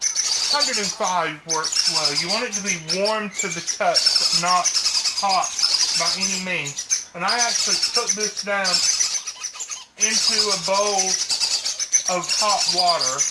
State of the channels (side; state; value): both; identical; correlation 1.00